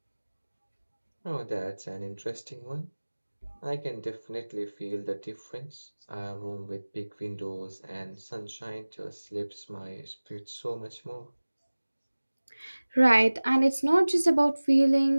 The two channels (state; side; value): inverted; both; correlation -1.00